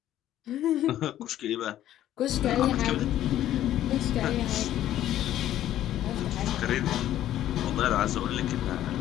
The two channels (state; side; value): quieter; right; 12.5 dB